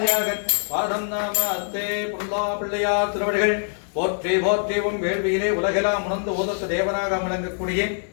பாதம் நமஸ்தே புல்லா பிள்ளையார் திருவடிகள் போற்றி போற்றிவும் வேள்வியிலே உலகெல்லாம் உணர்ந்து ஓதற்கு தேவனாக விளங்கக்கூடிய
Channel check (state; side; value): silent; right; 63 dB below the other